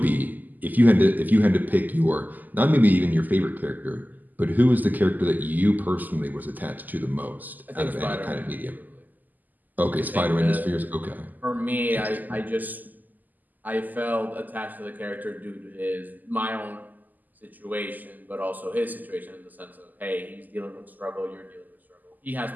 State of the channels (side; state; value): left; late; 0.084 ms